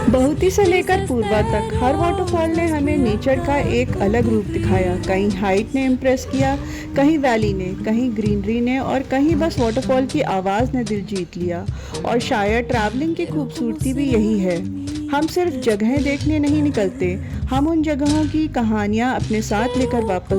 बहुती से लेकर पूर्वा तक हर वाटरफॉल ने हमें नेचर का एक अलग रूप दिखाया। कहीं हाइट ने इम्प्रेस किया, कहीं वैली ने, कहीं ग्रीनरी ने और कहीं बस वाटरफॉल की आवाज़ ने दिल जीत लिया। और शायद ट्रैवलिंग की खूबसूरती भी यही है, हम सिर्फ जगहें देखने नहीं निकलते, हम उन जगहों की कहानियाँ अपने साथ लेकर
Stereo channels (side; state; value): both; identical; correlation 1.00